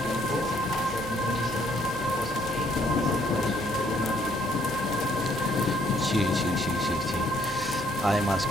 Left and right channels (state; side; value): normal; both; correlation 0.66